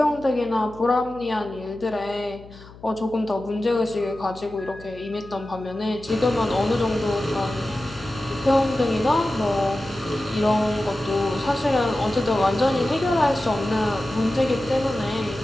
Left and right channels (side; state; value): left; noise; hum, 20 dB below the sound